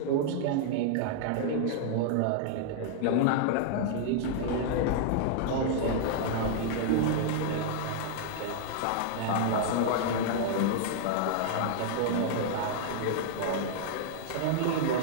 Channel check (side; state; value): both; different; correlation -0.01